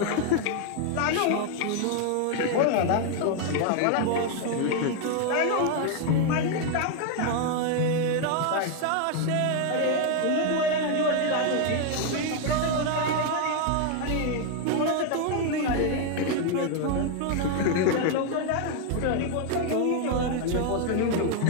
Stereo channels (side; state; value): both; different; correlation 0.00